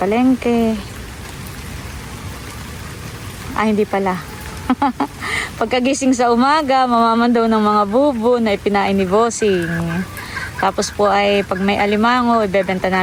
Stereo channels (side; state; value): both; identical; correlation 1.00